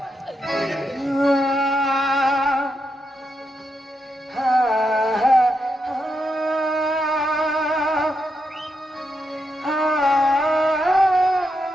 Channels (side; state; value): both; normal; correlation 0.83